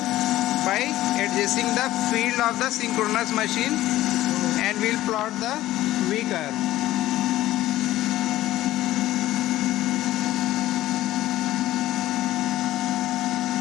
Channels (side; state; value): right; quieter; 15.2 dB